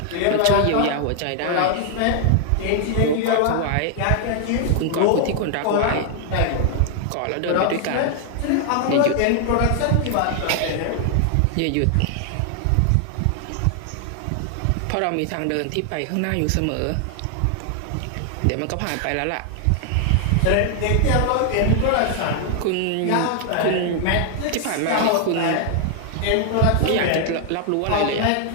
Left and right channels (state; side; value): different; both; correlation 0.00